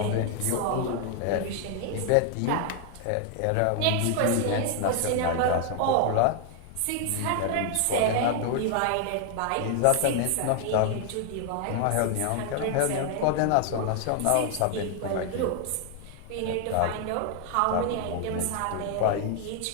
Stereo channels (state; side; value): different; both; correlation 0.00